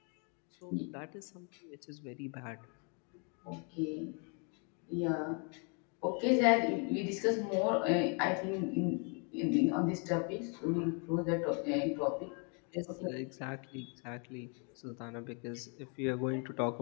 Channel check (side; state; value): right; quieter; 37.3 dB